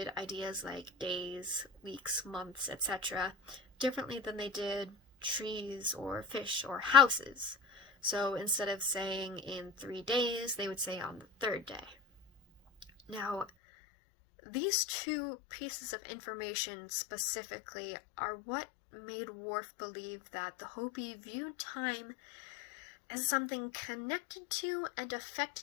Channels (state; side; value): drops out; right; at 13.5 s